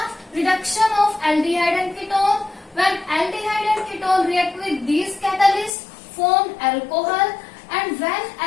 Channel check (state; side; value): drops out; right; at 5.7 s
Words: reduction of aldehyde and ketone. When aldehyde and ketone react with these catalysts, form alcohol, and when